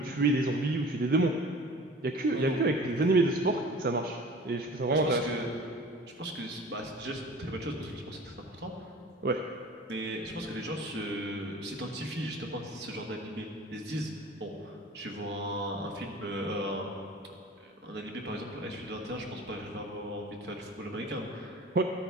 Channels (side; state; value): both; normal; correlation 0.43